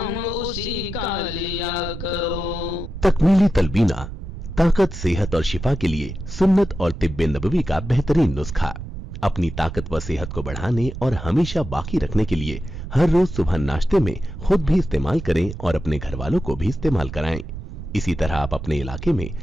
اسی کا لیا کرو۔ تکمیلی تلبینہ طاقت، صحت اور شفا کے لیے سنت اور طب نبوی کا بہترین نسخہ۔ اپنی طاقت و صحت کو بڑھانے اور ہمیشہ باقی رکھنے کے لیے ہر روز صبح ناشتے میں خود بھی استعمال کریں اور اپنے گھر والوں کو بھی استعمال کرائیں۔ اسی طرح آپ اپنے علاقے میں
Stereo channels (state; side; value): noise; right; rumble, 9 dB below the sound